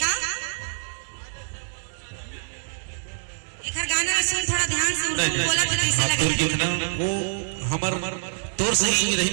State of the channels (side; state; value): left; silent; digital silence